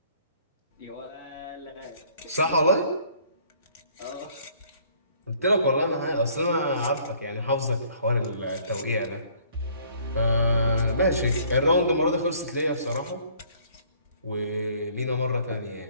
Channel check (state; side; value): inverted; both; correlation -0.59